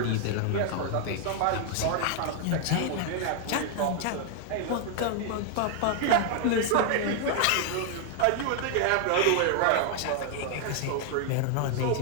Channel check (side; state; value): both; different; correlation 0.00